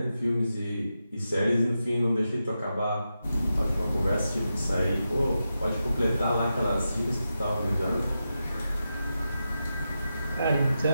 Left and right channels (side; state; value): both; inverted; correlation -0.89